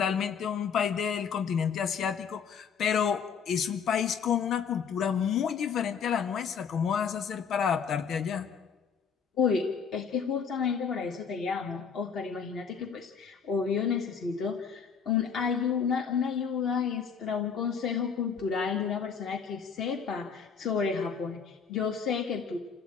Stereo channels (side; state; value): right; quieter; 6.6 dB